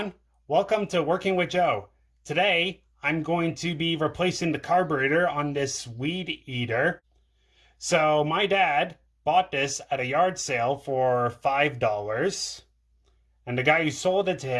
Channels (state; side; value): identical; both; correlation 1.00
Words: welcome to Working with Joe. Today I'm going to be replacing the carburetor on this weed eater. So my dad bought this at a yard sale for $5, and the guy who sold it to